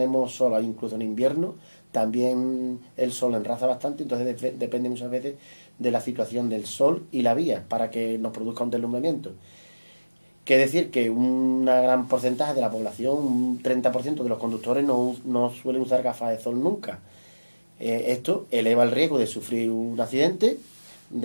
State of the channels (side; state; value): both; inverted; correlation -1.00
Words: sol, incluso en invierno también el sol enraza bastante, entonces depende muchas veces de la situación del sol y la vía para que nos produzca un deslumbramiento. Que decir que un gran porcentaje de la población, un 30% de los conductores no suelen usar gafas de sol nunca. Esto eleva el riesgo de sufrir un accidente